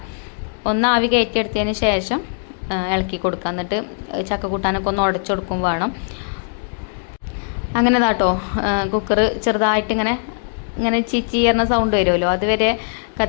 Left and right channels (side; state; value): right; silent; digital silence